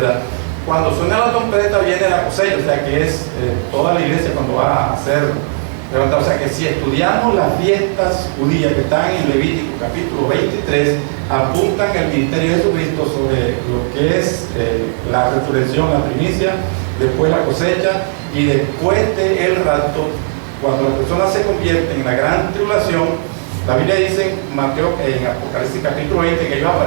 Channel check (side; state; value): left; silent; digital silence